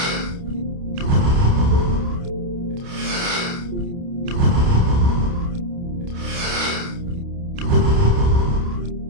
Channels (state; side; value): late; left; 29 ms